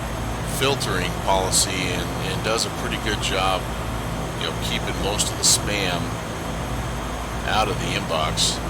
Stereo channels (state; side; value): identical; both; correlation 1.00